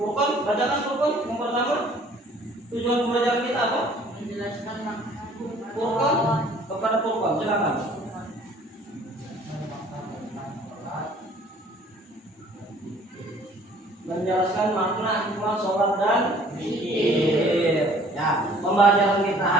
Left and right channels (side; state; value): both; normal; correlation 0.55